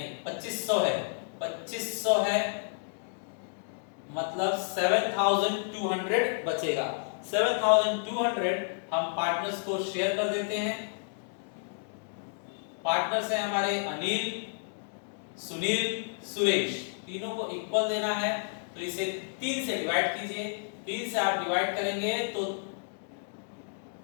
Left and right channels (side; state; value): right; silent; digital silence